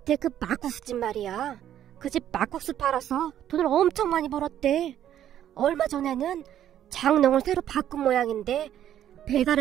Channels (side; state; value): left; quieter; 11.0 dB